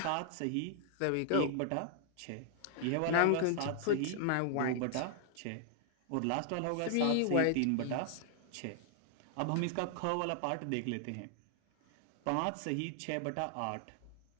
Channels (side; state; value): both; different; correlation -0.01